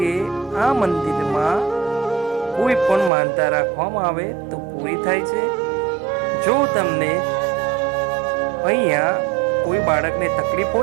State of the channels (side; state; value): left; drops out; at 3.1 s